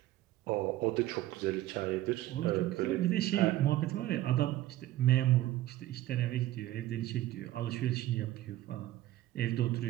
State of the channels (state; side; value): quieter; left; 15.0 dB